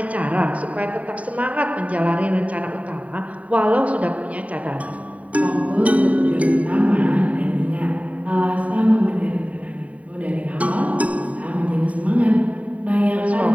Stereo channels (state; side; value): late; left; 0.068 ms